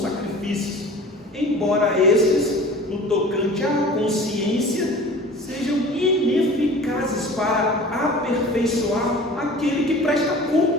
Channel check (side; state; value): both; normal; correlation 0.42